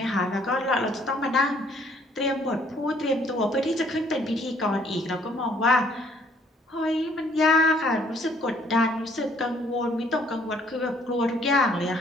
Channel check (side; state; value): both; normal; correlation 0.63